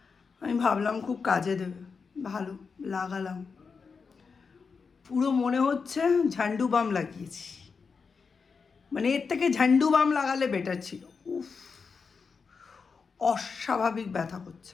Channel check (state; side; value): quieter; right; 5.2 dB